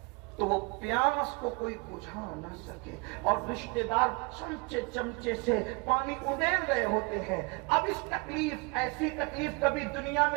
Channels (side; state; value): left; quieter; 29.4 dB